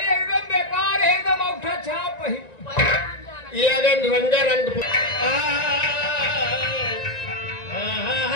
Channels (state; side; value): late; right; 1.9 ms